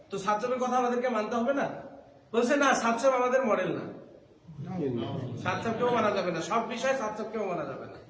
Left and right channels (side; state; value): both; identical; correlation 1.00